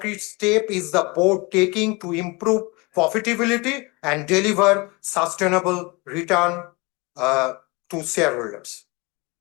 step is the board taking to improve profitability and deliver sustainable return to shareholders?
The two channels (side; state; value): right; quieter; 26.7 dB